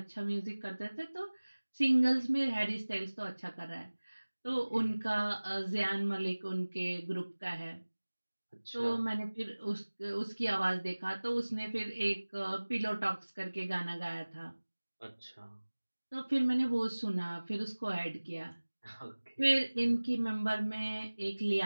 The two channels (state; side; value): inverted; both; correlation -1.00